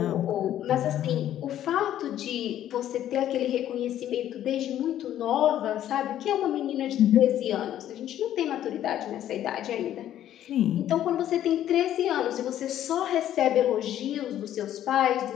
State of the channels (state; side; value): quieter; right; 11.7 dB